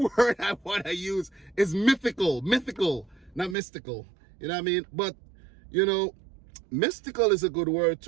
word I want to use is mythical, not mystical. You know what I mean? But, you know, mystical is a good word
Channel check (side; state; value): left; drops out; at 3.6 s